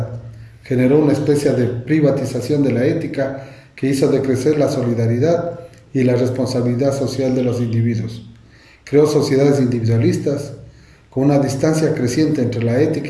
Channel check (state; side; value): identical; both; correlation 1.00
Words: generó una especie de privatización de la ética que hizo decrecer la solidaridad y la responsabilidad social de los individuos. Creó sociedades individualistas, con una distancia creciente entre la